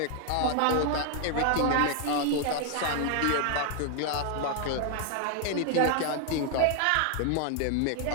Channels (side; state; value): both; different; correlation 0.00